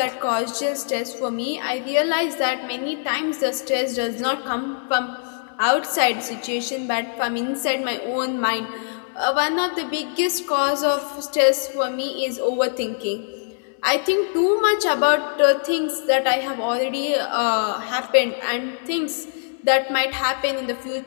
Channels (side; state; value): right; silent; digital silence